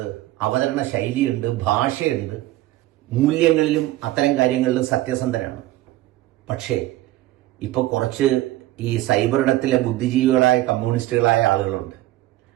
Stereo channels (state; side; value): quieter; left; 16.2 dB